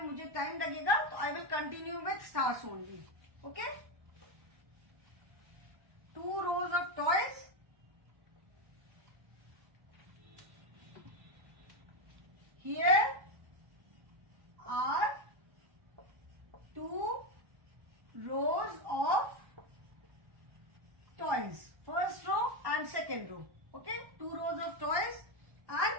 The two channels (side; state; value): left; late; 1.1 ms